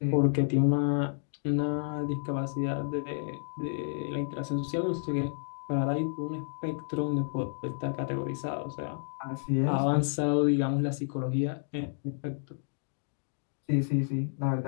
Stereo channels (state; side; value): silent; right; digital silence